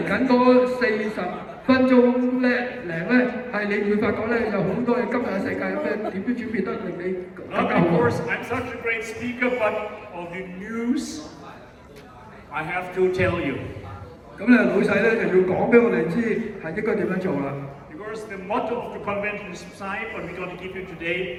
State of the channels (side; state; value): both; identical; correlation 1.00